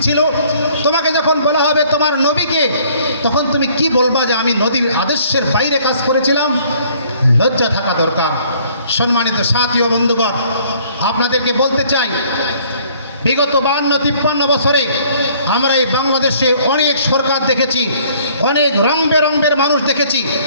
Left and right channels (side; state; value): both; inverted; correlation -0.59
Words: ছিল? তোমাকে যখন বলা হবে তোমার নবীকে, তখন তুমি কি বলবা যে আমি নবীর আদর্শের বাইরে কাজ করেছিলাম? লজ্জা থাকা দরকার। সম্মানিত সাথী ও বন্ধুগণ, আপনাদেরকে বলতে চাই, বিগত 52-53 বছরে আমরা এই বাংলাদেশে অনেক সরকার দেখেছি, অনেক রং বেরঙের মানুষ দেখেছি,